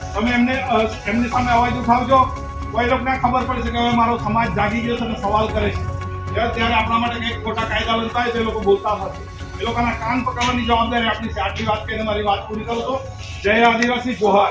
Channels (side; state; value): both; identical; correlation 1.00